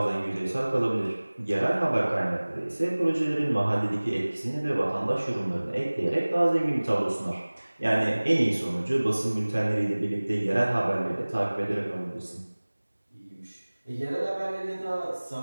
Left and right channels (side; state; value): both; inverted; correlation -1.00